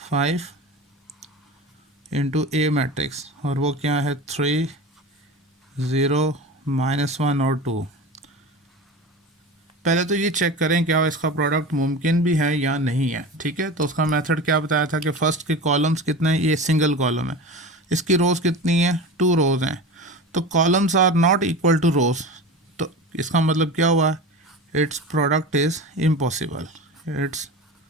इंटू ए मैट्रिक्स, और वो क्या है 3 0 -1 और 2। पहले तो ये चेक करें क्या इसका प्रोडक्ट मुमकिन भी है या नहीं है। ठीक है। तो उसका मेथड क्या बताया था कि फर्स्ट के कॉलम्स कितने हैं, ये सिंगल कॉलम है, इसकी रोज़ कितनी है 2 रोज़ हैं, तो columns are not equal to rows, तो इसका मतलब क्या हुआ, its product is impossible, its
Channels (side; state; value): both; normal; correlation 0.30